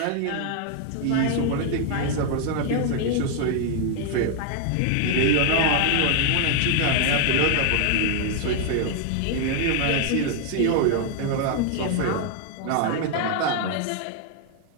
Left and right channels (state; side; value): different; both; correlation 0.00